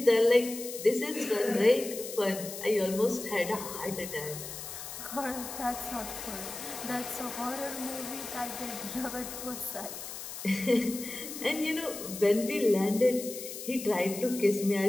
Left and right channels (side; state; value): left; noise; hiss, 9 dB below the sound